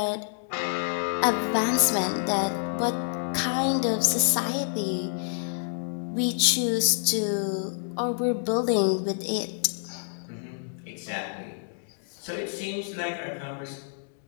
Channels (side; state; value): right; silent; digital silence